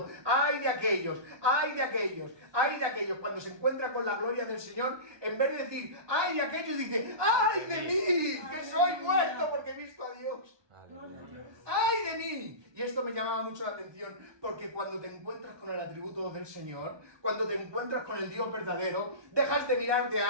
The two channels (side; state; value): left; late; 1.2 ms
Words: ¡ay de aquellos! ¡Ay de aquellos! ¡Ay de aquellos! Cuando se encuentra con la gloria del Señor, en vez de decir, ¡ay de aquellos! Dice, ¡ay de mí! ¡Que soy muerto porque he visto a Dios! Aleluya. ¡Ay de mí! Y esto me llamaba mucho la atención, porque cuando te encuentras con el atributo del Señor, cuando te encuentras con el Dios verdadero, dejas de mirarte